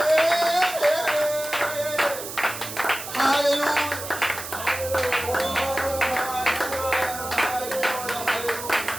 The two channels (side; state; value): right; noise; hiss, 9 dB below the sound